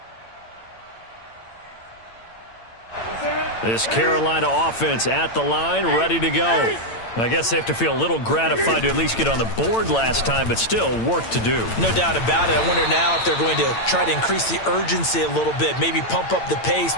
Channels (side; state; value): right; late; 8.9 ms